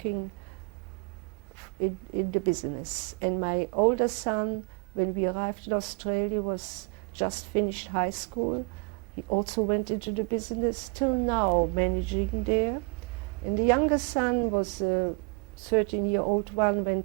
in the business. And my older son, when we arrived in Australia, was just finished high school. He also went into the business, till now managing there. And the younger son was a 13-year-old one,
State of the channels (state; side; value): quieter; left; 33.5 dB